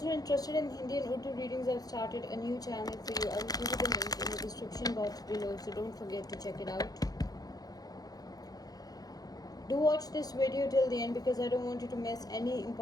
who are interested in Hindi and Urdu readings, I've started a new channel for you. I will give you the link in the description box below, so don't forget to check it out. Do watch this video till the end because I don't want you to miss any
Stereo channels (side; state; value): right; late; 0.18 ms